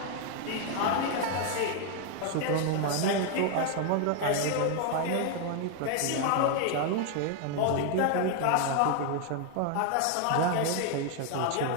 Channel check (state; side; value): different; both; correlation 0.01